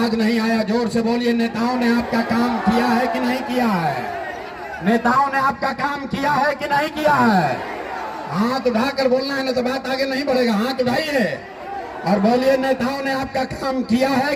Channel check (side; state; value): both; identical; correlation 1.00